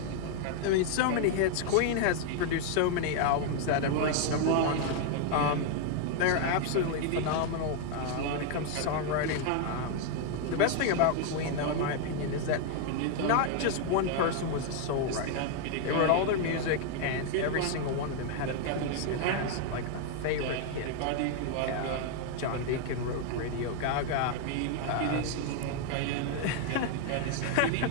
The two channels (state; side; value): different; both; correlation 0.00